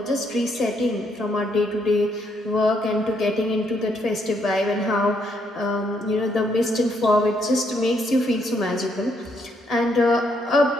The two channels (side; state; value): both; normal; correlation 0.74